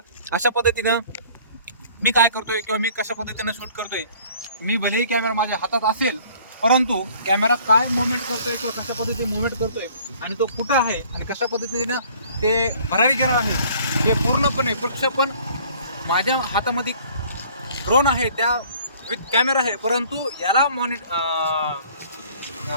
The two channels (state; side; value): inverted; both; correlation -0.54